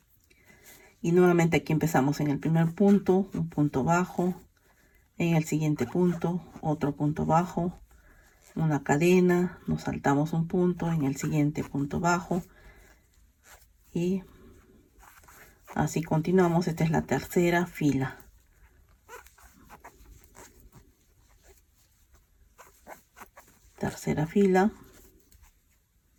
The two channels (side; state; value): both; identical; correlation 1.00